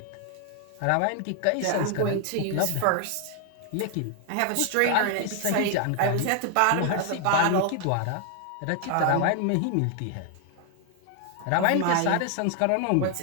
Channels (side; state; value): both; different; correlation 0.00